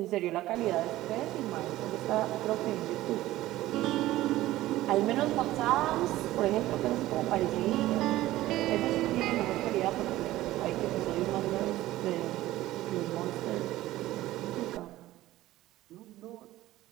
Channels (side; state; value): left; quieter; 16.0 dB